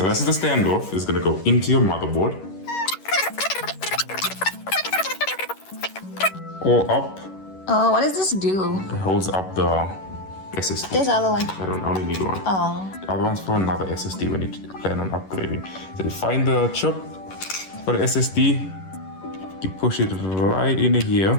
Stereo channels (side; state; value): right; late; 11 ms